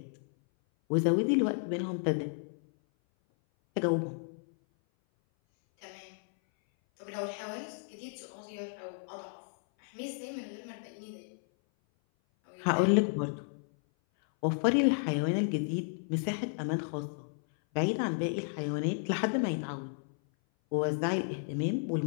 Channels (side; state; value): right; silent; 56 dB below the other